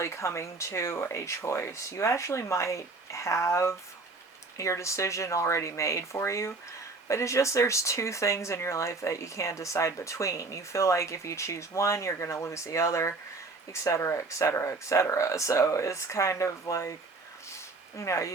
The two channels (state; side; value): quieter; left; 3.6 dB